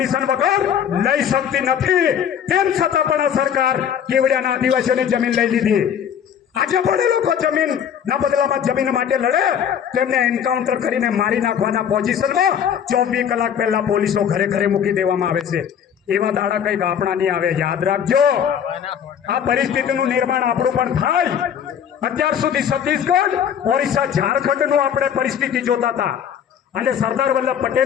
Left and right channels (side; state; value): right; quieter; 8.6 dB